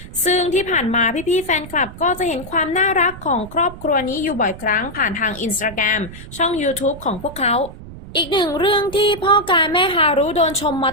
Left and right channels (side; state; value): right; noise; rumble, 15 dB below the sound